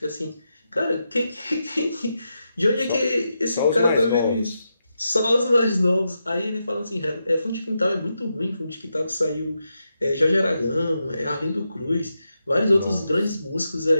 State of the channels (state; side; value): inverted; both; correlation -0.86